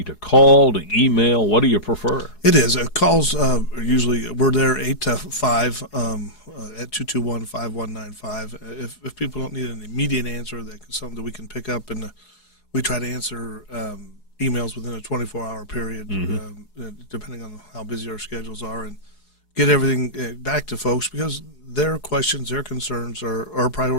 to call, to email? What do you prefer? It is. Calls usually, we're there 8 to 5 at 221-5195. If people don't need an immediate answer, that's something that we can pick up, and we try to answer emails within a 24-hour period, depending on how busy our schedules are, and get everything back to folks, because their questions, their concerns are a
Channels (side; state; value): right; late; 4.8 ms